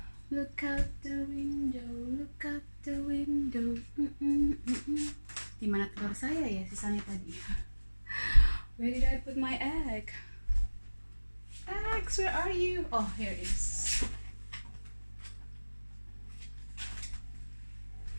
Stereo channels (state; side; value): inverted; both; correlation -1.00